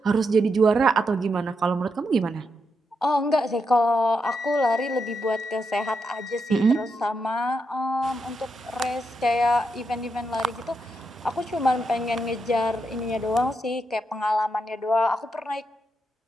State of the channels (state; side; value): normal; both; correlation 0.83